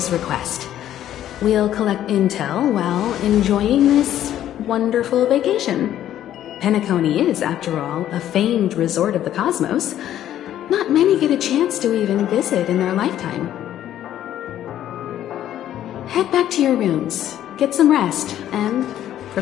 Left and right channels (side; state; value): right; quieter; 11.7 dB